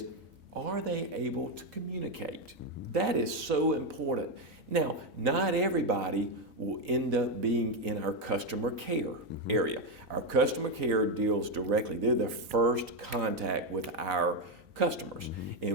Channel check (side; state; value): left; late; 1.7 ms